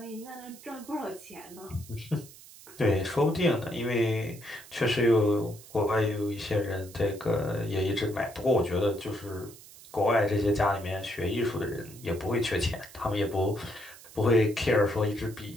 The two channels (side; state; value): right; noise; hiss, 19 dB below the sound